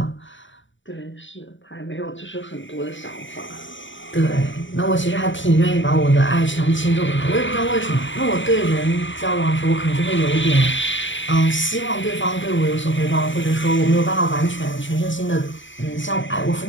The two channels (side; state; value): right; late; 0.55 ms